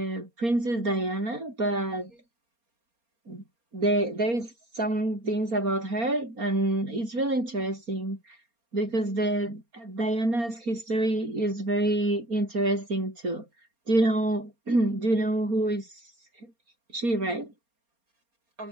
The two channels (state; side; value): late; left; 4.3 ms